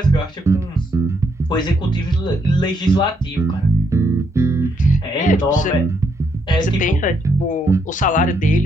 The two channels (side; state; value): both; normal; correlation 0.75